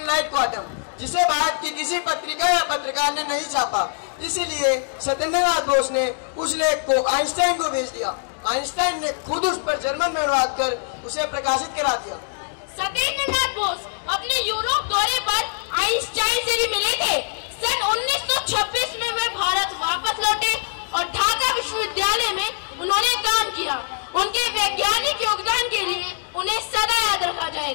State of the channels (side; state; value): right; silent; digital silence